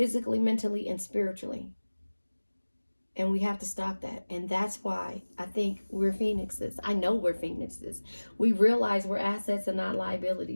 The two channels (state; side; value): inverted; both; correlation -1.00